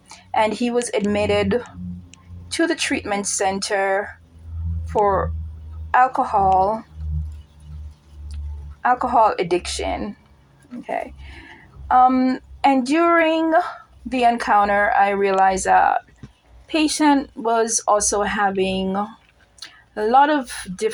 and he was admitted to the treatment center for alcohol addiction. Okay. And during the encounter, I realized that patient was also having a lot of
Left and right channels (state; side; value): identical; both; correlation 1.00